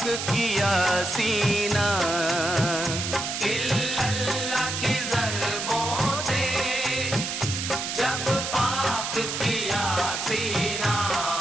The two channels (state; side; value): noise; right; hiss, 3 dB below the sound